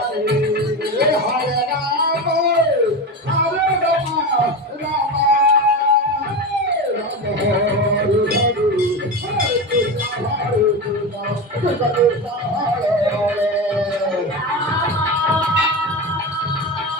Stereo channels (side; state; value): both; normal; correlation 0.21